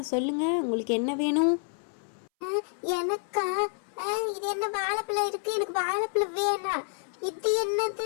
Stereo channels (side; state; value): right; silent; 59 dB below the other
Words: சொல்லுங்க, உங்களுக்கு என்ன வேணும்? எனக்கா? இது என்ன வாழைப்பழம் இருக்கு? எனக்கு வாழைப்பழம் வேணாம். இது